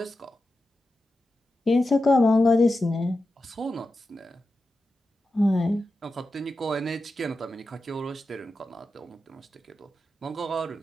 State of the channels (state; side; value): normal; both; correlation 0.91